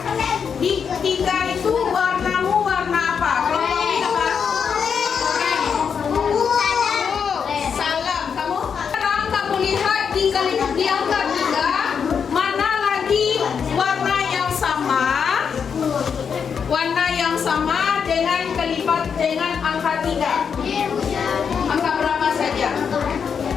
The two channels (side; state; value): right; quieter; 6.7 dB